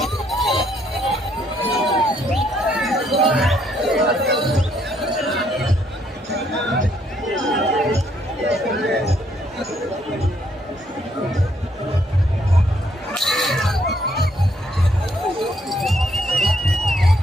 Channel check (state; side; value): normal; both; correlation 0.70